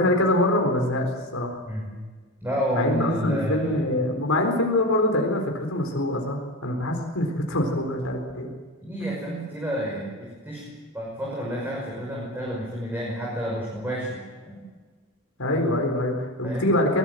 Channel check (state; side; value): normal; both; correlation 0.25